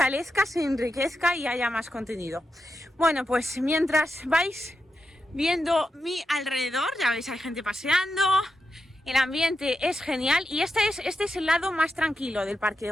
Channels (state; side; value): normal; both; correlation 0.87